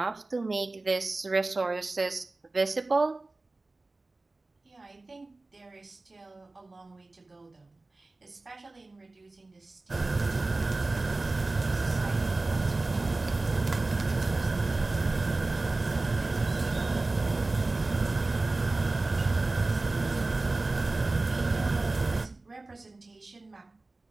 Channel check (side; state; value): left; quieter; 3.2 dB